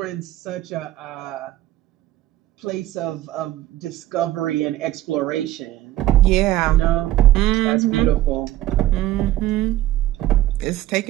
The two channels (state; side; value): quieter; left; 14.3 dB